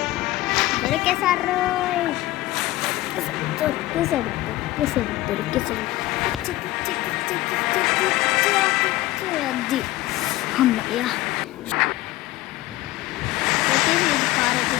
దొరికేసారు. అది అమ్మయ్యా. అయితే ఇది కార్ అయితే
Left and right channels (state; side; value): quieter; right; 17.5 dB